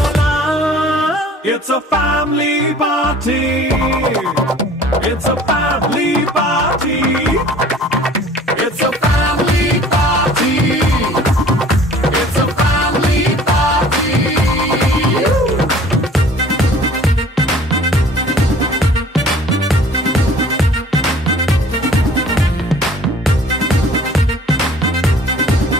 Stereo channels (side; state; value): both; normal; correlation 0.50